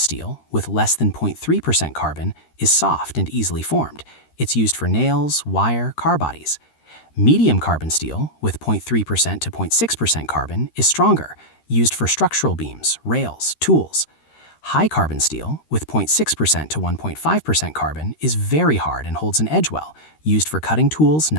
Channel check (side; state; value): right; late; 13 ms